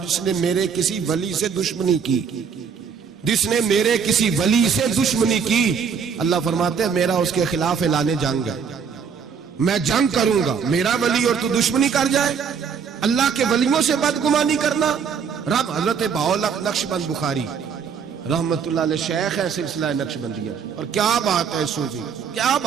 جس نے میرے کسی ولی سے دشمنی کی، جس نے میرے کسی ولی سے دشمنی کی، اللہ فرماتے ہیں میرا اس کے خلاف اعلان جنگ ہے، میں جنگ کروں گا۔ میرا ولی اور تو دشمنی کر جائے، اللہ کے ولیوں سے بدگمانی کرنا۔ رب حضرت بہاءاللہ نقشبند بخاری رحمت اللہ علیہ شیخ ہے سلسلہ نقشبندیہ، اور کیا بات ہے صوفی، کیا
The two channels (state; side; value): quieter; left; 6.5 dB